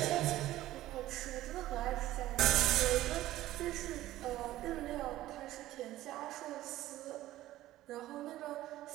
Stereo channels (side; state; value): left; quieter; 15.1 dB